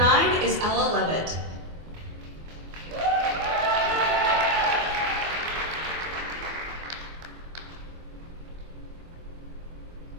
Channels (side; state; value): left; late; 24 ms